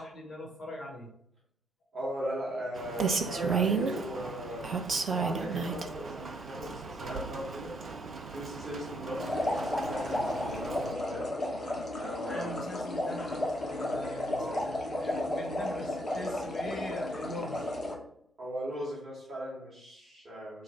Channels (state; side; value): normal; both; correlation 0.71